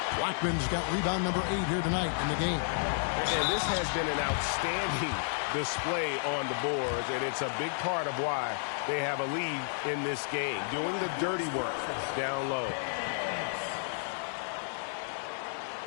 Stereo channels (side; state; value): right; silent; digital silence